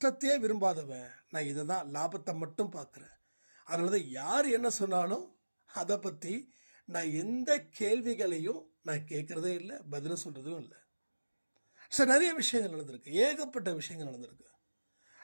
விரும்பாதவன், நான் இதை தான் லாபத்தை மட்டும் பார்க்குறேன். அதனால தான் யார் என்ன சொன்னாலும் அதை பற்றி நான் எந்த கேள்விகளையும் நான் கேட்குறதே இல்லை, பதில் சொல்கிறதும் இல்லை. ஸோ நிறைய விஷயங்கள் நடந்திருக்கு, ஏகப்பட்ட விஷயங்கள் நடந்திருக்கு.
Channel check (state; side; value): inverted; both; correlation -1.00